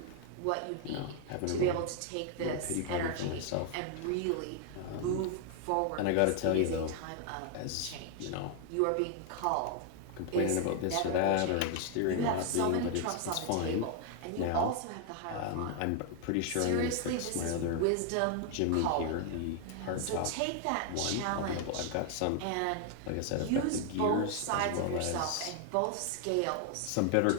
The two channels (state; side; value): different; both; correlation 0.00